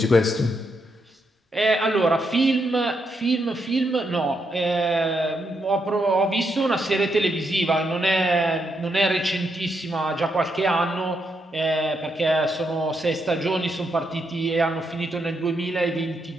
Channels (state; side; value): normal; both; correlation 0.80